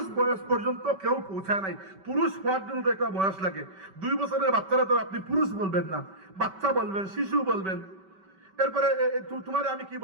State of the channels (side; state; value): left; late; 5.2 ms